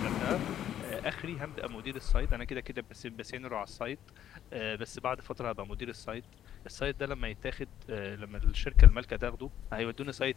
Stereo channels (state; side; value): quieter; right; 10.7 dB